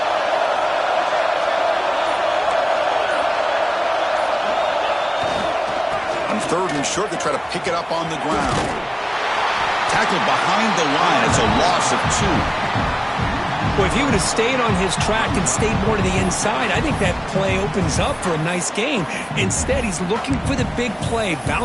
On third and short, they try to pick it up on the ground. Tackled behind the line. It's a loss of 2. Well, if he would have stayed on his track and stayed more to the inside, I think that play opens up for a nice gain. Instead, he's looking for the big play,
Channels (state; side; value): identical; both; correlation 1.00